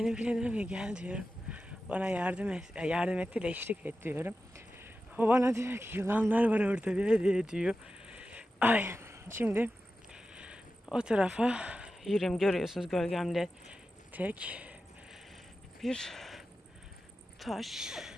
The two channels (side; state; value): both; normal; correlation 0.92